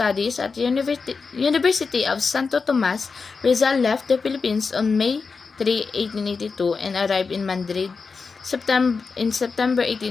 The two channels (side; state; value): right; quieter; 4.8 dB